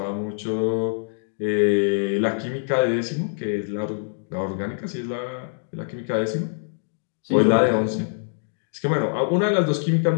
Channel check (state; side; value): silent; right; digital silence